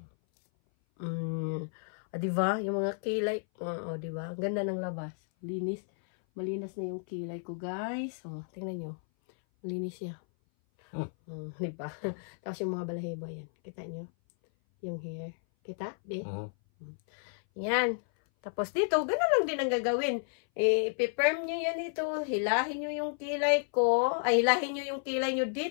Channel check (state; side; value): silent; right; 56 dB below the other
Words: Diba? Yung mga kilay. Diba? Ang ganda ng labas. Linis. Malinis na yung kilay ko, guys. Tingnan nyo. Malinis siya. Diba? Tapos yung mga balahibo yan. Kita nyo? Yung hair. Kita? Di? Yan. Tapos dito, gano'n lang din ang gagawin. Ipi-firm nyo yan dito. Hilahin nyo yung kilay ko. Ay, hilahin nyo yung kilay nyo